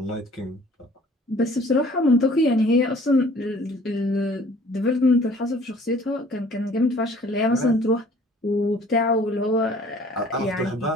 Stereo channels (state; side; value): normal; both; correlation 0.53